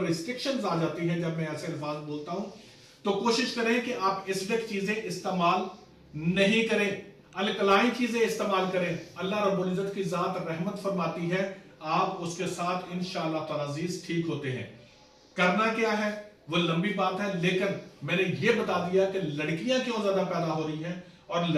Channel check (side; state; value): both; identical; correlation 1.00